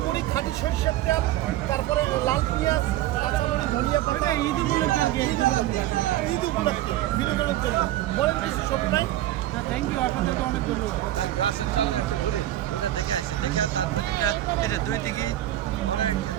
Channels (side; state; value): left; quieter; 14.2 dB